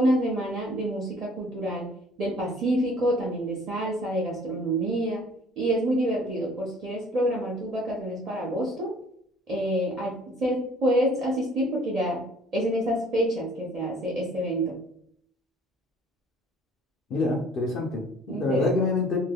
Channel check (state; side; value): normal; both; correlation 0.54